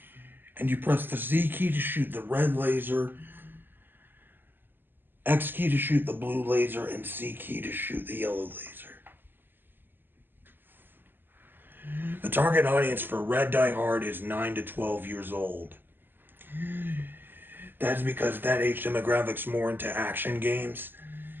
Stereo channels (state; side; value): late; left; 0.093 ms